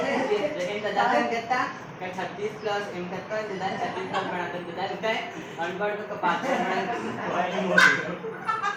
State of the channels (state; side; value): identical; both; correlation 1.00